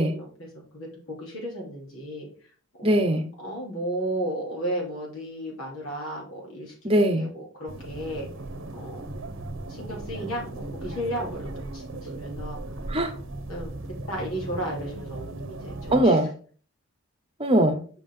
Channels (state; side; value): normal; both; correlation 0.44